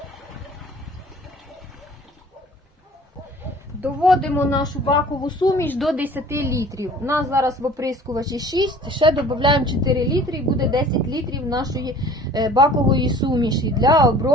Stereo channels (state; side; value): normal; both; correlation 0.49